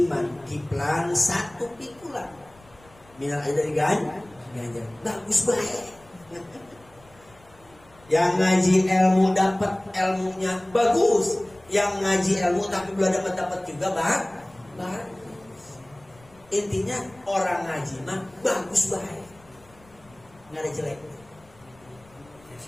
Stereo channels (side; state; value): left; noise; rumble, 27 dB below the sound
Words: kiplan 1 pikulan minal ajri dari ganjar, bagus baik. Yang ngaji ilmu dapat ilmunya bagus, yang ngaji ilmu tapi belum dapat juga bagus. Intinya orang ngaji mah bagus baik, nggak ada jelek.